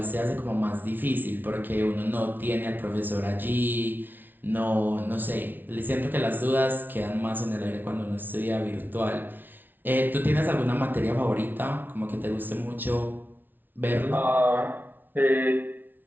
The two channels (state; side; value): late; left; 0.091 ms